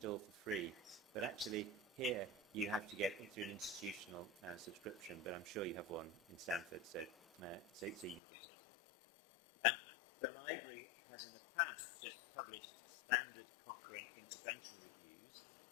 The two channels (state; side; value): drops out; right; at 8.2 s